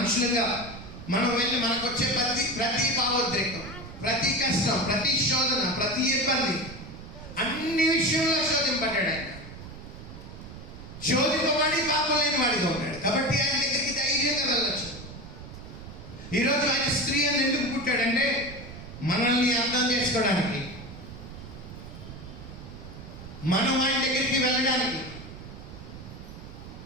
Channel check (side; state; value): right; noise; rumble, 13 dB below the sound